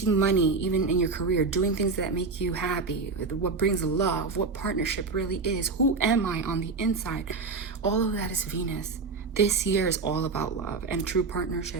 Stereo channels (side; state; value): left; quieter; 4.3 dB